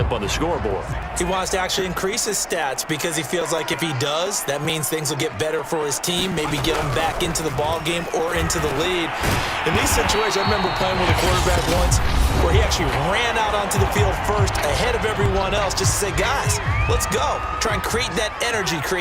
on the scoreboard. He wants to actually increase his stats because he feels like if he does, that means things will get better for his team, maybe get him back into the ball game or into the lead. In these situations, I remember playing with a quarterback once where he actually ran out onto the field first ahead of everyone else just to say, guys, let's go. Try and create that energy,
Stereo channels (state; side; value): identical; both; correlation 1.00